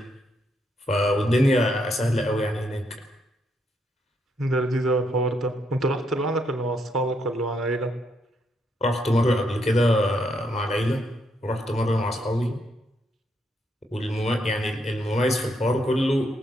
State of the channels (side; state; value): both; normal; correlation 0.77